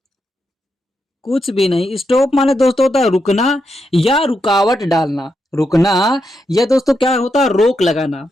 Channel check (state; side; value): normal; both; correlation 0.83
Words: कुछ भी नहीं। स्टॉप माने दोस्तों होता है रुकना या रुकावट डालना। रुकना या दोस्तों क्या होता है, रोक लगाना।